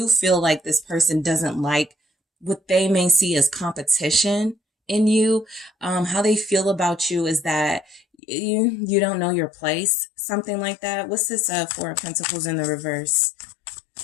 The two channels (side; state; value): right; drops out; at 8.0 s